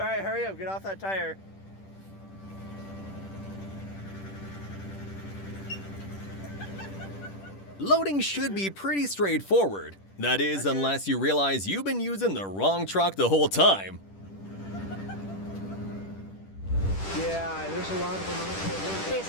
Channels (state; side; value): late; right; 10 ms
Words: right, hurry up, get off that tire. Loading should be pretty straightforward. That is, unless you realize you've been using the wrong truck the whole time. Yeah, there's a lot of them out there.